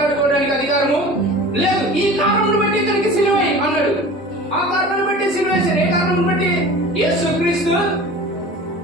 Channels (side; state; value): both; normal; correlation 0.39